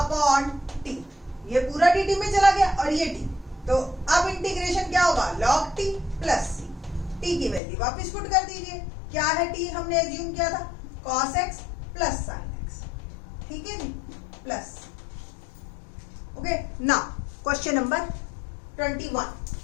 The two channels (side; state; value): right; drops out; at 7.6 s